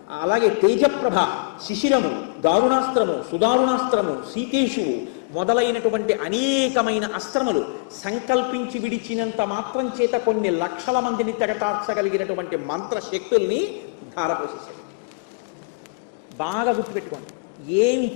అలాగే తేజప్రభ, శిశిరము, దారుణాస్త్రము, సుదారుణాస్త్రము, సీతేషువు మొదలైనటువంటి అనేకమైన అస్త్రములు సంకల్పించి విడిచినంత మాత్రం చేత కొన్ని లక్షల మందిని తెగటార్చగలిగినటువంటి మంత్రశక్తుల్ని ధారపోసేశాడు. బాగా గుర్తుపెట్టుకోండి,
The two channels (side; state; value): right; quieter; 31.5 dB